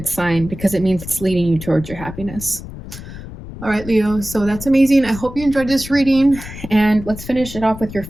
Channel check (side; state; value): left; noise; rumble, 12 dB below the sound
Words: sign, because it means it's leading you towards your happiness. All right, Leo, so that's amazing. I hope you enjoyed this reading, and let's finish it off with your